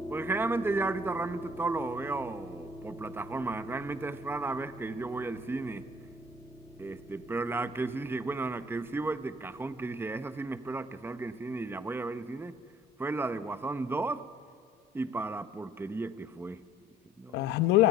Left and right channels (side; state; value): both; normal; correlation 0.57